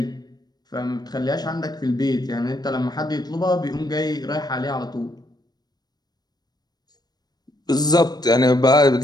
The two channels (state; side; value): late; right; 0.19 ms